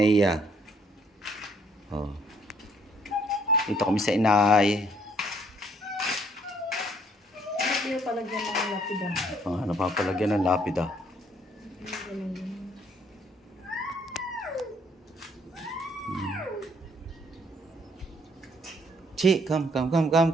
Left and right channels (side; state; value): both; normal; correlation 0.65